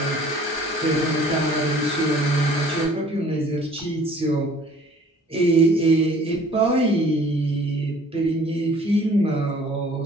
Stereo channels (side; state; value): both; normal; correlation 0.53